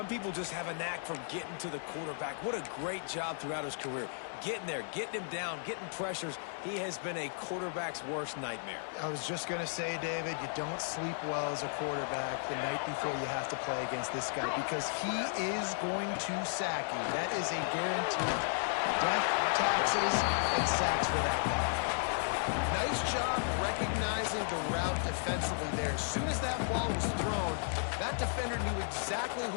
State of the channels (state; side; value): silent; right; digital silence